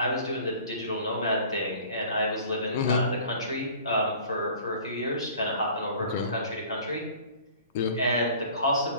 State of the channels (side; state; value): both; inverted; correlation -0.48